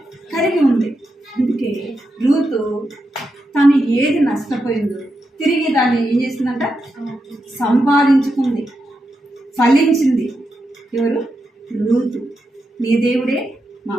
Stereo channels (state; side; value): normal; both; correlation 0.86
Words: కలిగి ఉంది. అందుకే రూతు తను ఏది నష్టపోయిందో తిరిగి దాన్ని ఏం చేసిందంట? సంపాదించుకుంది, ఫలించింది. ఎవరు? రూతు. నీ దేవుడే మా